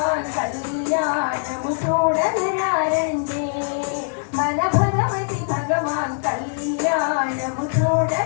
కళ్యాణము చూడగరారండి మన భగవతి భగవాన్ కళ్యాణము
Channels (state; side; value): silent; right; digital silence